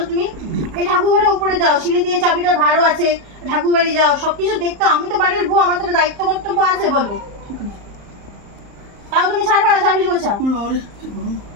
তুমি। এই ঠাকুর ঘরের উপরে যাও, সিঁড়ি দিয়ে চাবিটা ভারও আছে, ঠাকুর বাড়ি যাও, সবকিছু দেখতে। আমি তো বাড়ির বউ, আমার তো দায়িত্ব কর্তব্য আছে, বলো। তাও তুমি ছাড়বা না চাবি গোছা?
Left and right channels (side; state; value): left; late; 34 ms